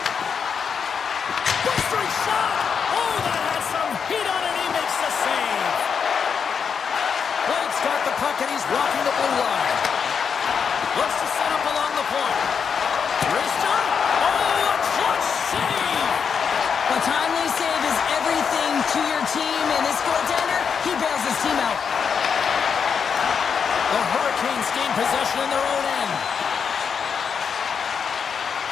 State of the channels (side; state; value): right; quieter; 6.5 dB